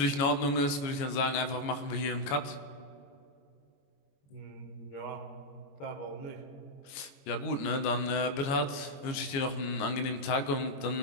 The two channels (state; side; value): late; right; 22 ms